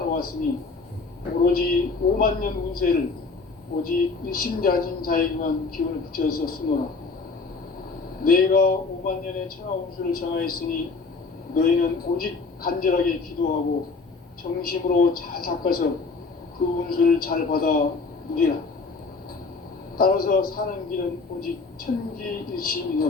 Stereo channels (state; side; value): quieter; right; 4.2 dB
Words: 오로지 5만 년 운세를 오직 일심자진 자에게만 기운을 붙여서 쓰노라. 내가 5만 년의 천하 운수를 정하였으니 너희는 오직 간절하게 기도하고 정심으로 잘 닦아서 그 운수를 잘 받아 누리라. 따라서 사는 길은 오직